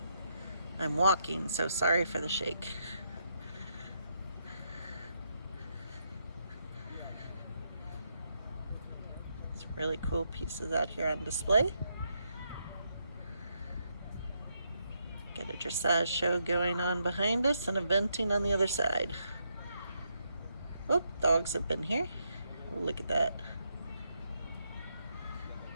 I'm walking, so sorry for the shake. Some really cool pieces out here on display. Got a dressage show going on behind us and eventing on the other side. Oh, dogs have been here. Oh, look at that.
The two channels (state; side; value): inverted; both; correlation -0.79